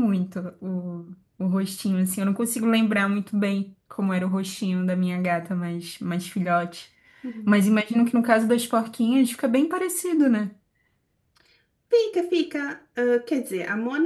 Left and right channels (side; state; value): both; identical; correlation 1.00